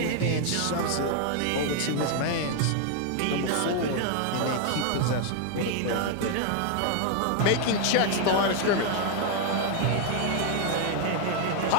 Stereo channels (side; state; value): both; different; correlation 0.00